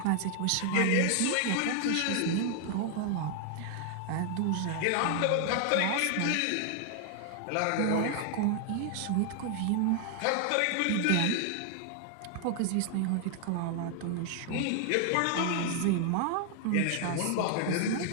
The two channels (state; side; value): different; both; correlation 0.00